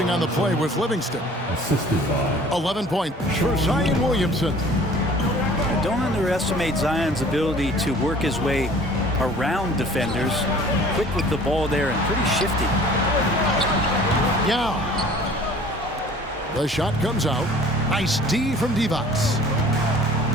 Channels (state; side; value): normal; both; correlation 0.49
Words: on the play was Livingston. Assisted by 11 points for Zion Williamson. Don't underestimate Zion's ability to work his way around defenders. Quick with the ball there and pretty shifty. Yeah. The shot comes out. Nice D from Divac.